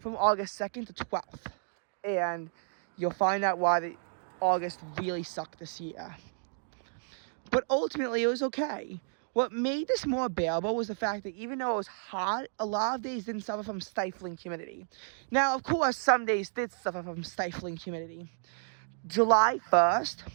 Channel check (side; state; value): left; silent; digital silence